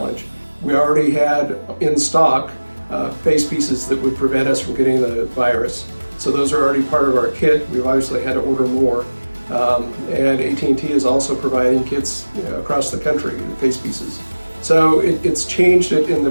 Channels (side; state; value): both; inverted; correlation -1.00